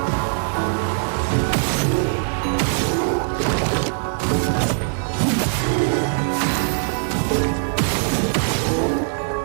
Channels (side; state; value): left; silent; digital silence